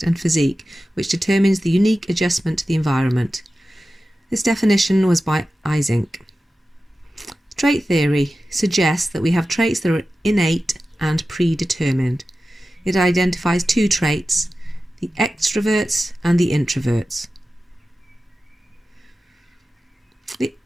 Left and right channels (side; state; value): both; normal; correlation 0.94